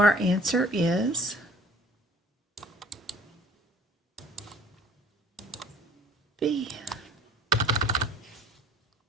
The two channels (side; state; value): both; normal; correlation 0.51